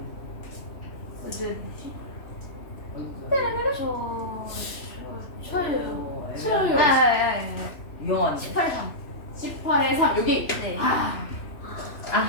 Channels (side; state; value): right; late; 3.0 ms